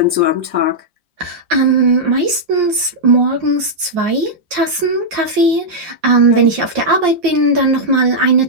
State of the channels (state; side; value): late; left; 5.7 ms